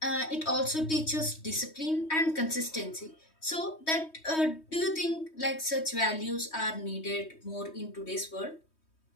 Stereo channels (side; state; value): right; late; 3.2 ms